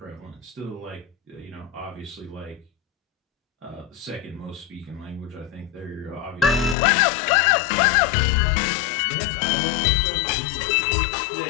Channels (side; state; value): right; drops out; at 6.8 s